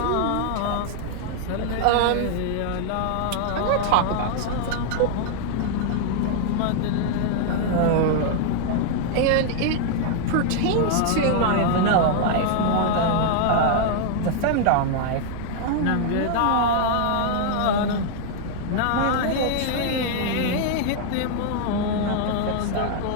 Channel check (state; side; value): different; both; correlation -0.01